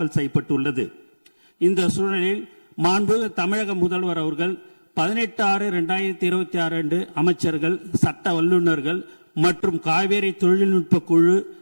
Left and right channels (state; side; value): inverted; both; correlation -1.00